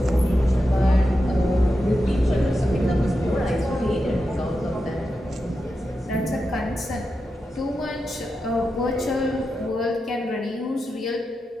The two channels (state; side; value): normal; both; correlation 0.89